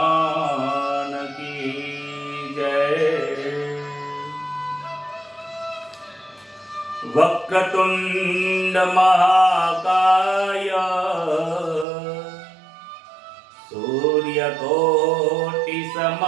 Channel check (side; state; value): left; drops out; at 11.9 s